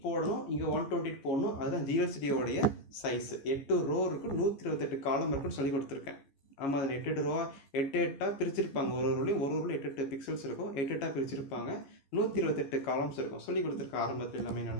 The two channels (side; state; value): right; late; 14 ms